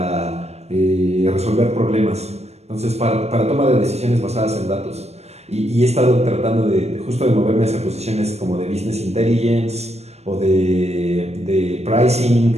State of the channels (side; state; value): left; late; 0.31 ms